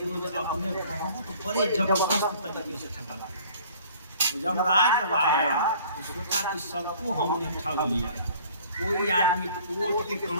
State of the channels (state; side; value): inverted; both; correlation -0.52